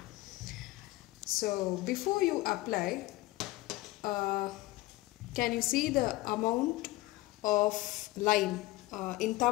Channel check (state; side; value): quieter; right; 19.1 dB